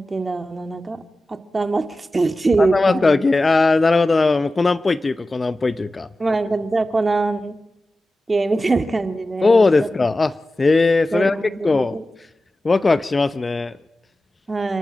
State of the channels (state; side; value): normal; both; correlation 0.94